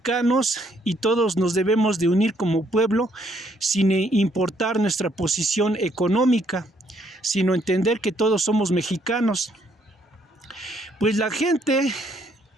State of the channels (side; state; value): both; normal; correlation 0.69